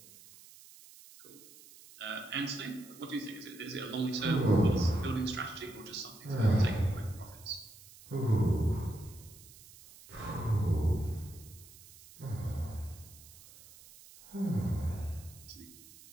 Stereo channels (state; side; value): noise; right; hiss, 21 dB below the sound